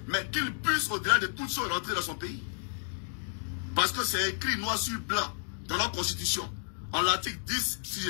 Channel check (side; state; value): right; silent; digital silence